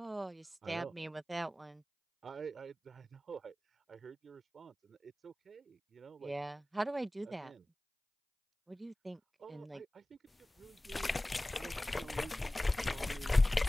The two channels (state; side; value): normal; both; correlation 0.97